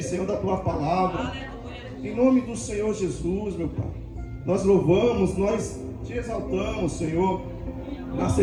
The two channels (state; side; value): identical; both; correlation 1.00